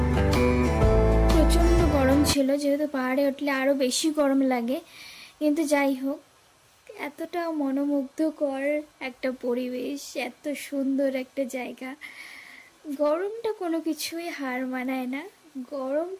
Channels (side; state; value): both; identical; correlation 1.00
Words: ছিল, যেহেতু পাহাড়ে উঠলে আরও বেশি গরম লাগে। কিন্তু যাই হোক, এতটা মনোমুগ্ধকর একটা পরিবেশ, এত সুন্দর একটা জায়গা, গরমটা কোনো কিছুই হার মানায় না। গরম